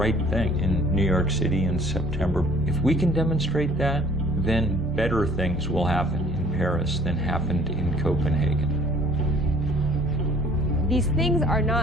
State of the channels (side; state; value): both; normal; correlation 0.54